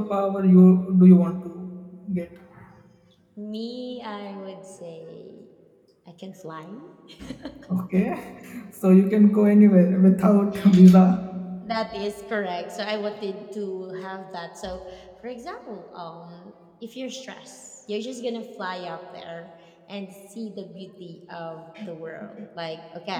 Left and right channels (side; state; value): both; identical; correlation 1.00